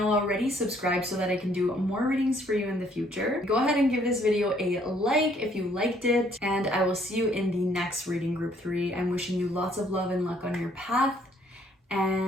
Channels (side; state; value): both; normal; correlation 0.64